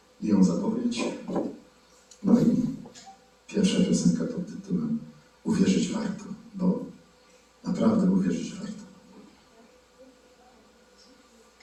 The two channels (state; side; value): identical; both; correlation 1.00